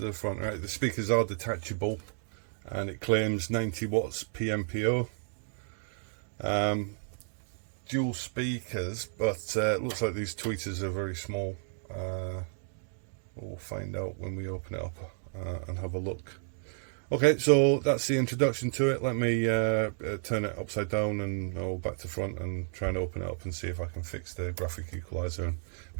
the front. Right, the speakers are detachable, and it claims 90 watts PMPO. Dual speakers, but it looks like these tweeters are very small. We'll find out when we open it up and have a look. Okay, so that's the introduction to it. Let me turn it upside down and back to front and try and open it up and see if I can fix the graphic equalizer and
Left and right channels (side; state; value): left; silent; 56 dB below the other